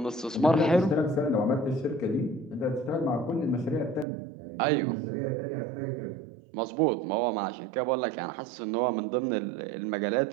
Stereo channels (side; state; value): left; drops out; at 4.0 s